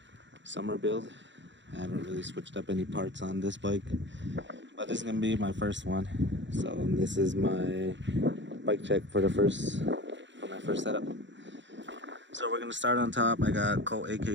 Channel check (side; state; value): left; late; 0.53 ms